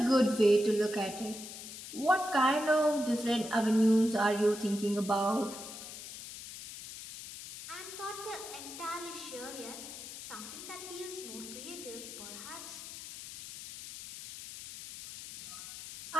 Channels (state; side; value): noise; left; hiss, 11 dB below the sound